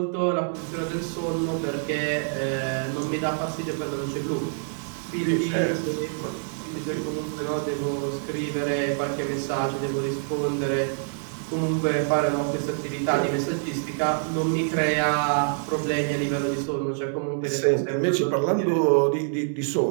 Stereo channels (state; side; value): silent; left; 61 dB below the other